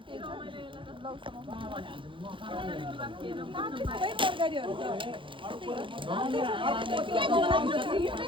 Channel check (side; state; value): left; late; 0.25 ms